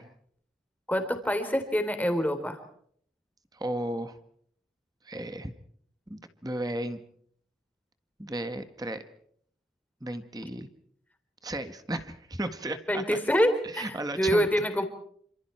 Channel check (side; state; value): both; normal; correlation 0.80